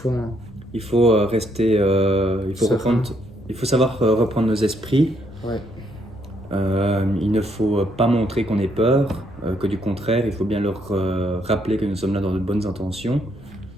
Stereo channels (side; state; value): left; noise; rumble, 22 dB below the sound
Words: Il faut rester, Serein. il faut savoir reprendre nos esprits. Ouais. Il ne faut pas montrer qu'on ait peur, que du contraire, il faut bien leur rappeler que nous sommes là dans de bonnes intentions.